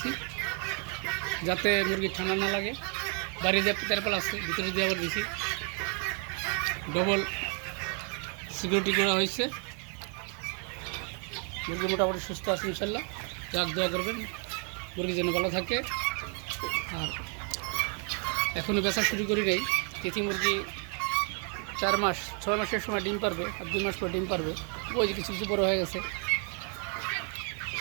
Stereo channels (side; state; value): left; quieter; 39.6 dB